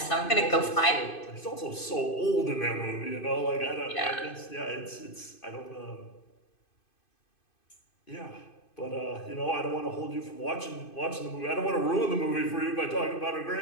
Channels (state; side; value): late; right; 2.5 ms